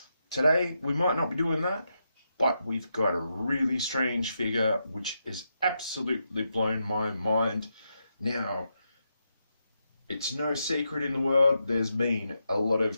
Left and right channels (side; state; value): both; inverted; correlation -0.84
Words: Today, we might not be doing that, but we've got a really strange figure which has absolutely blown my mind. Now, it's no secret in the world, there's been a lot